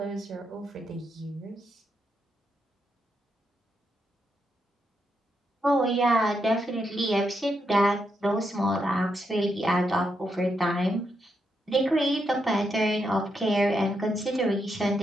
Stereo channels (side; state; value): both; normal; correlation 0.82